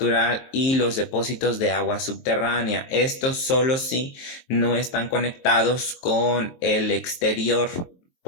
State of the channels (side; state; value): right; late; 23 ms